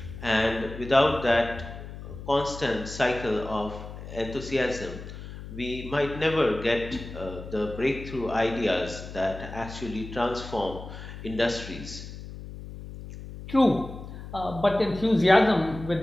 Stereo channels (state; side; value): noise; left; hum, 12 dB below the sound